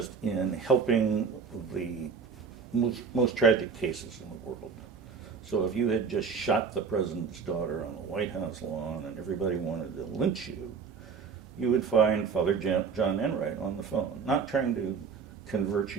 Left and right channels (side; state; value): left; quieter; 5.8 dB